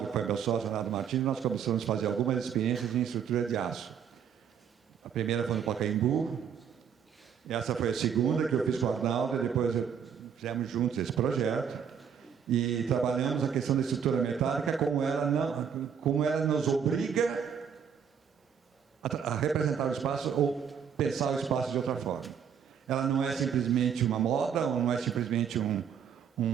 que foi meu sócio, Arnaldo Martins, nós começamos a fazer algumas experiências em estrutura de aço. A primeira foi no Pacaembu, essa foi a segunda que eu fiz com o Arnaldo, e depois fizemos juntos esse projeto, e trabalhamos a questão da estrutura metálica, como ela nos obriga a representar o espaço ou pensar o espaço de outra forma. Ela não é simplesmente uma moda, ou não é simplesmente um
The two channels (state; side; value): quieter; left; 7.7 dB